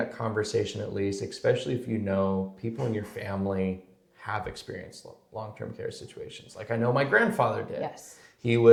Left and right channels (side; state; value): both; identical; correlation 1.00